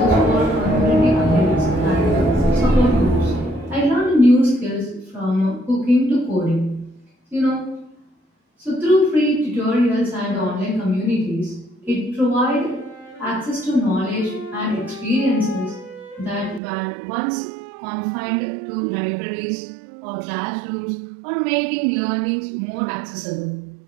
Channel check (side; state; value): left; drops out; at 16.6 s